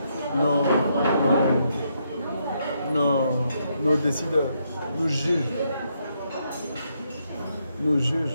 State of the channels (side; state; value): both; inverted; correlation -0.77